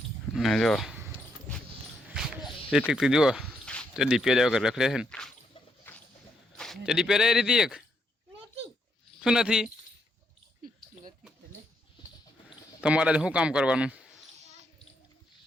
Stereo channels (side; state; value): both; normal; correlation 0.77